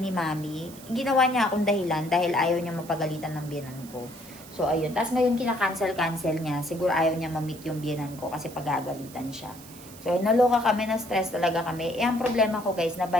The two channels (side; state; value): right; noise; hiss, 18 dB below the sound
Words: ni Mami, ginawa niya akong dahilan dahil ayaw niya mapagalitan ng biyenan ko. So, ayun. Tapos ngayon, kinakancel niya. Siguro ayaw niya ma-meet yung biyenan ko kasi pagagalitan siya. So, naloka kami, na-stress talaga kami. Ang problema ko, guys,